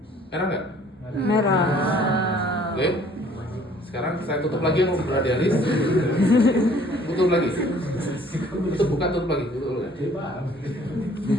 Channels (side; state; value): both; normal; correlation 0.56